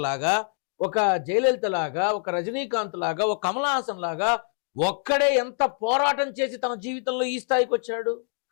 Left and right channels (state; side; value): silent; right; 55 dB below the other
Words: లాగా, ఒక జయలలిత లాగా, ఒక రజనీకాంత్ లాగా, ఒక కమల్ హాసన్ లాగా ఒక్కడే ఎంత పోరాటం చేసి తన జీవితంలో ఈ స్థాయికి వచ్చాడు.